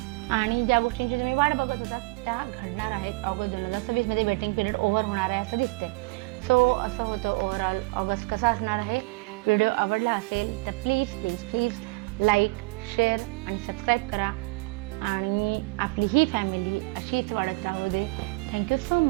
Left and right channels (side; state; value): left; quieter; 26.0 dB